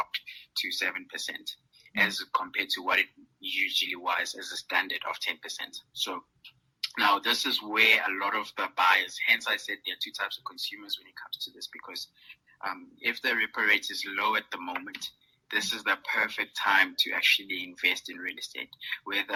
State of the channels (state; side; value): identical; both; correlation 1.00